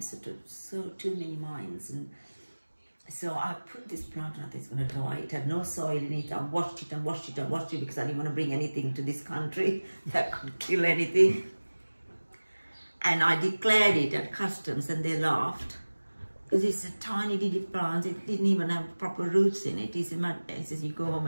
many minds. And so I put this plant and I thought it's going to die. It had no soil in it. I washed it and washed it and washed it because I didn't want to bring anything to this country that could kill anything. And I declared it at customs and they laughed. Because it's a tiny little plant, it didn't even have proper roots in it. He says, "You go home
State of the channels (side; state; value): both; inverted; correlation -1.00